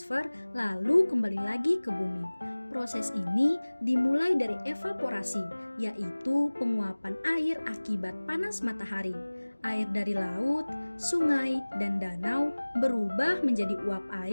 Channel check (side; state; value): both; inverted; correlation -1.00